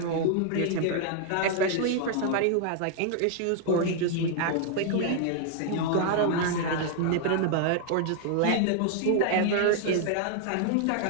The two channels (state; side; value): different; both; correlation 0.00